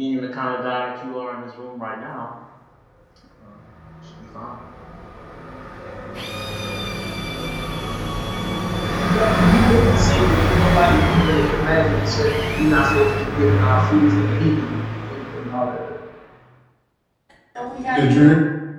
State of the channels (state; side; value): identical; both; correlation 1.00